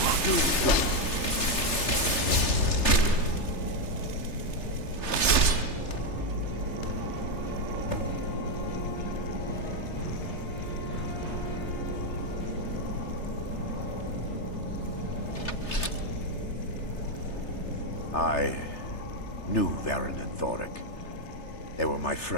doing? I knew Varen and Thoric. They were my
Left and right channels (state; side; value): late; right; 3.3 ms